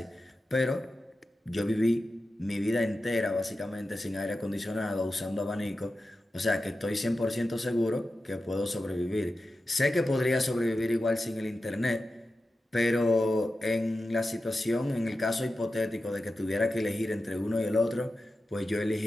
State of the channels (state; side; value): normal; both; correlation 0.92